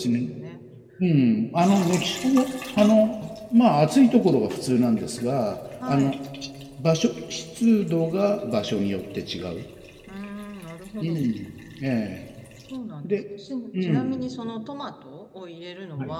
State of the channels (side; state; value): both; identical; correlation 1.00